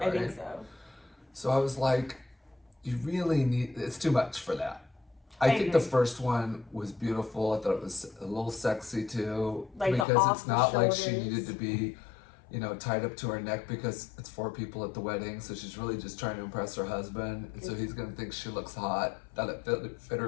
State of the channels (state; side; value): drops out; right; at 10.1 s